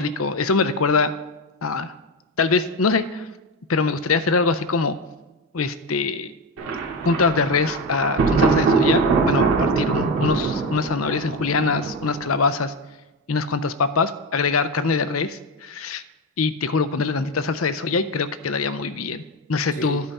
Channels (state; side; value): normal; both; correlation 0.15